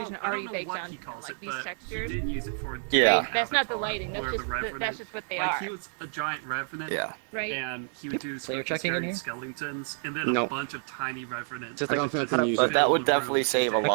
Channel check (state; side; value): silent; left; 56 dB below the other